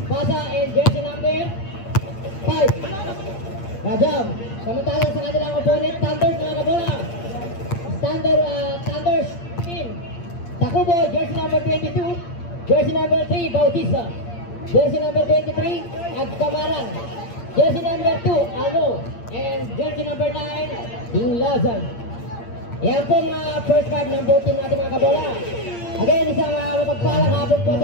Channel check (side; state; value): right; late; 8.7 ms